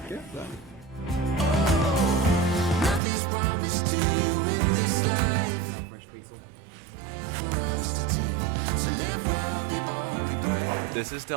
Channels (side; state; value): left; drops out; at 3.0 s